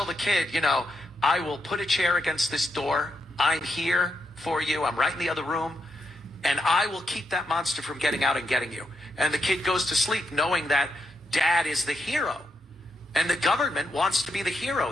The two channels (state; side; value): normal; both; correlation 0.82